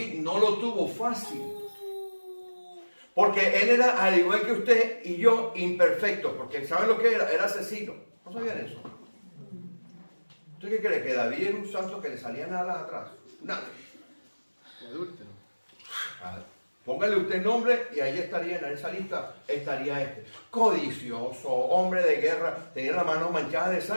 no lo tuvo fácil, porque él era, al igual que usted y yo, imperfecto, porque ¿saben lo que era? Era asesino. ¿No sabían eso? ¿Usted qué cree? ¿Que David era un santo que le salían alas atrás? Nada. Adúltero. Póngale usted nombre y ahí estaría, en esa lista estaría este. Codicioso, hombre de guerra, tenía las manos manchadas de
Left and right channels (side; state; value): both; inverted; correlation -1.00